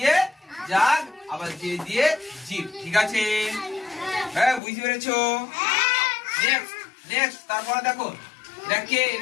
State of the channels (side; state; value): right; drops out; at 4.6 s